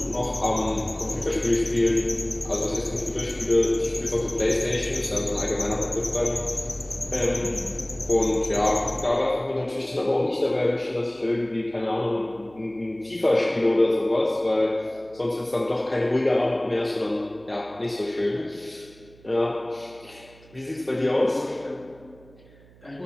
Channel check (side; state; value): right; noise; hum, 25 dB below the sound